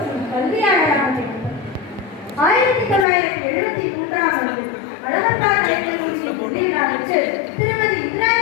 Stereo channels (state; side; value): drops out; right; at 3.1 s